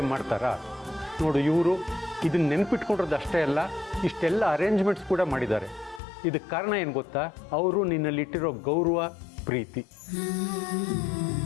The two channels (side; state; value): right; drops out; at 6.0 s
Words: ಮಾಡ್ತಾರಾ? ನೋಡು, ಇವರು ಇದನ್ನ ನೆನ್ಪಿಟ್ಕೊಂಡಿರೋದು ಅಷ್ಟೇ ಅಲ್ಲ, ಇಷ್ಟೆಲ್ಲ ಅರೇಂಜ್ಮೆಂಟ್ಸ್ ಕೂಡ ಮಾಡಿದ್ದಾರೆ. ಇದಕ್ಕೆ ಕಾರಣ ಏನು ಗೊತ್ತಾ? ಅವರು ನಿನ್ನಲ್ಲಿಟ್ಟಿರೋ ಗೌರವ, ಪ್ರೀತಿ.